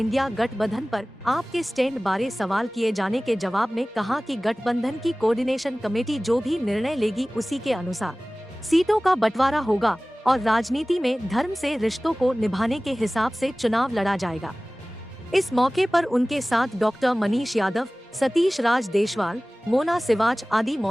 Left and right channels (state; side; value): normal; both; correlation 0.98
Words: गठबंधन पर आपके स्टैंड बारे सवाल किए जाने के जवाब में कहा कि गठबंधन की कोऑर्डिनेशन कमेटी जो भी निर्णय लेगी उसी के अनुसार सीटों का बंटवारा होगा और राजनीति में धर्म से रिश्तों को निभाने के हिसाब से चुनाव लड़ा जाएगा। इस मौके पर उनके साथ डॉक्टर मनीष यादव, सतीश राज देशवाल, मोना सिवाच आदि